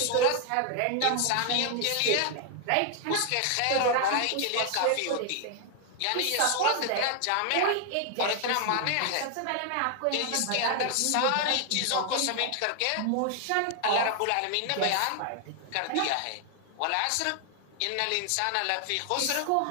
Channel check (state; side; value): different; both; correlation 0.00